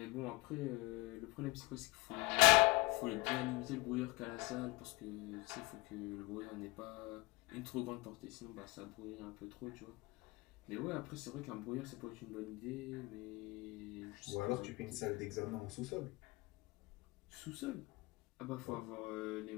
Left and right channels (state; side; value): quieter; right; 23.1 dB